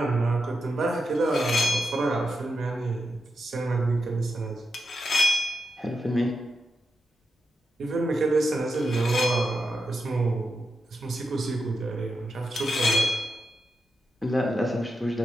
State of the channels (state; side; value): normal; both; correlation 0.86